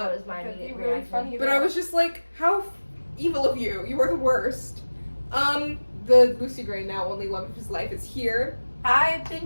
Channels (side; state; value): both; inverted; correlation -1.00